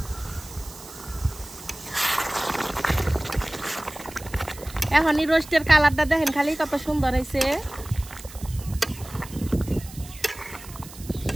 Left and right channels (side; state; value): right; noise; hiss, 17 dB below the sound